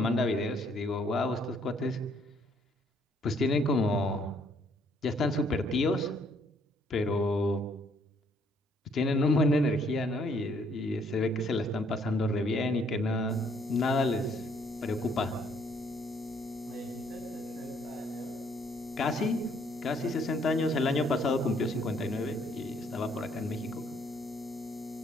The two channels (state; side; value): normal; both; correlation 0.66